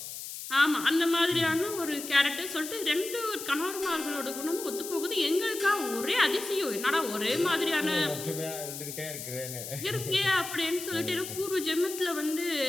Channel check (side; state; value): left; noise; hiss, 9 dB below the sound